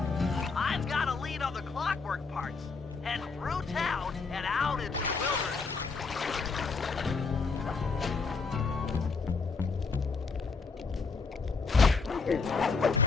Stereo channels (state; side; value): quieter; right; 4.6 dB